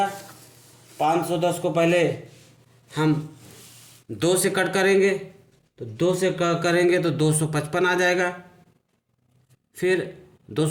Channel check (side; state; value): both; identical; correlation 1.00